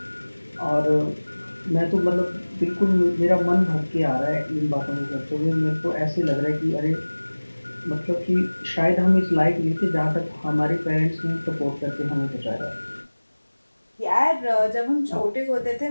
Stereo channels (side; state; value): both; inverted; correlation -1.00